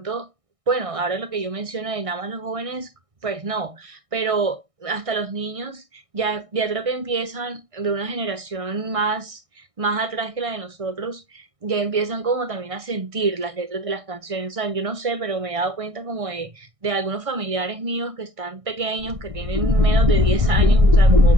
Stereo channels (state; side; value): late; left; 1.6 ms